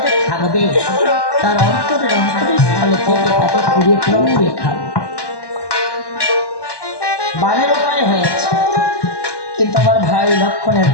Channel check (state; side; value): late; right; 1.1 ms